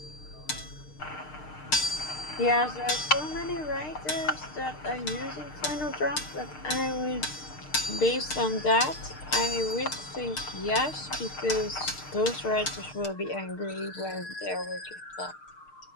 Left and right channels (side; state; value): right; late; 6.6 ms